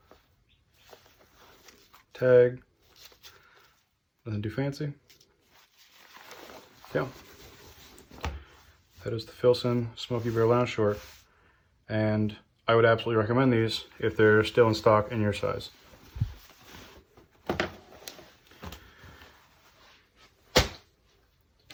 tag. Nothing too fancy. Yeah. That is the Filson Smokey Bear Lounge Short. And I would absolutely recommend these if they're still in stock in your size.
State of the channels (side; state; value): both; identical; correlation 1.00